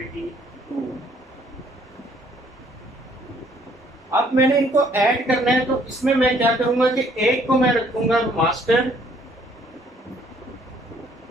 2। अब मैंने इनको ऐड करना है, तो इसमें मैं क्या करूंगा कि एक को मैं रखूंगा मास्टर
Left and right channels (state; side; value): normal; both; correlation 0.63